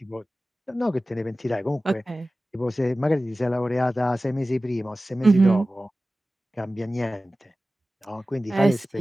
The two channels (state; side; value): normal; both; correlation 0.96